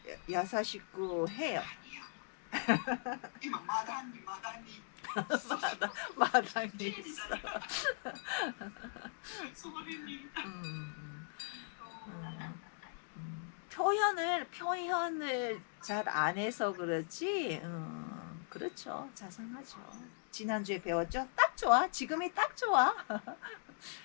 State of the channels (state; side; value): silent; right; digital silence